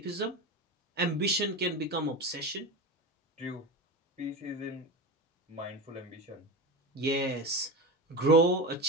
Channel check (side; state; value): both; normal; correlation 0.24